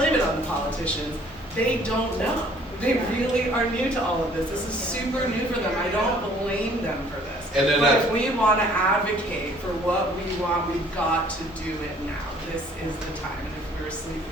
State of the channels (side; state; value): both; normal; correlation 0.57